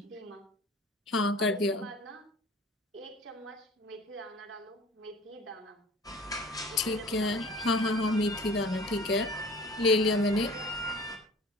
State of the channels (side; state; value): both; normal; correlation 0.45